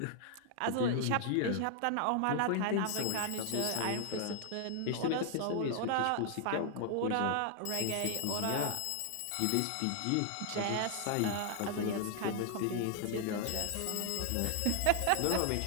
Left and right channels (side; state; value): both; different; correlation 0.00